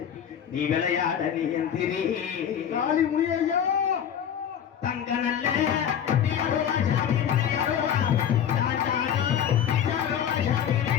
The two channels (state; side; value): quieter; right; 9.0 dB